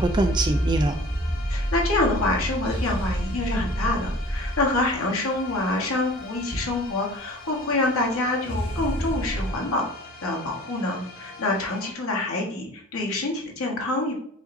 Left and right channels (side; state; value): both; normal; correlation 0.44